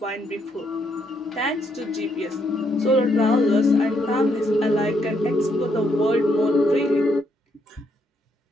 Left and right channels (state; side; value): normal; both; correlation 0.74